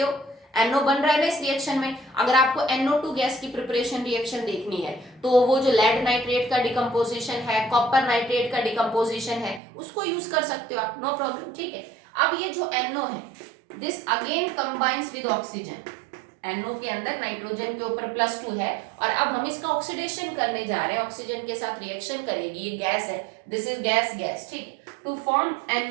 हो। NO बन रहा है ना इस रिएक्शन में। अगर आपको NO2 गैस की प्रिपरेशन रिएक्शन देखनी है तो वो जो लेड नाइट्रेट का डिकम्पोजिशन है, कॉपर नाइट्रेट का डिकम्पोजिशन है, उसको यूज कर सकते हो आप, नो प्रॉब्लम, ठीक है। अब ये जो NO है, this again combines with oxygen. NO के अंदर नाइट्रोजन के ऊपर +2 है और अब हम इसका ऑक्सीडेशन करने जा रहे हैं, ऑक्सीजन के साथ रिएक्शन करेगी, ये गैस है, दिस इज गैस, ठीक, टू फॉर्म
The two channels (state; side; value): drops out; left; at 9.6 s